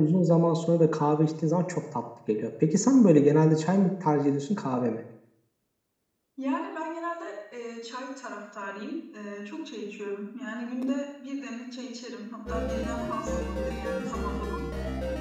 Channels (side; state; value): both; identical; correlation 1.00